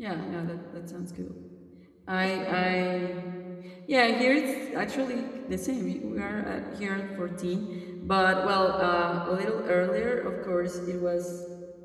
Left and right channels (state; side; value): identical; both; correlation 1.00